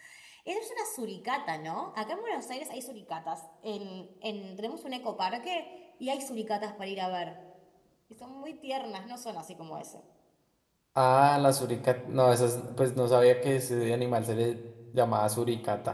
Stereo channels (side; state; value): both; identical; correlation 1.00